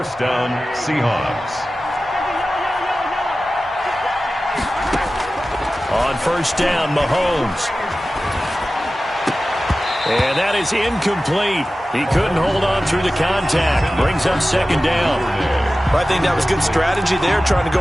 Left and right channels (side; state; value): both; normal; correlation 0.95